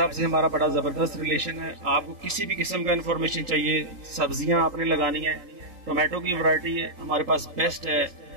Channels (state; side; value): late; left; 3.8 ms